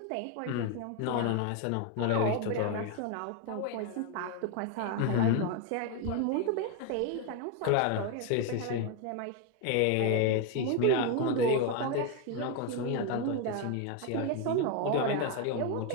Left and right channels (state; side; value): different; both; correlation 0.01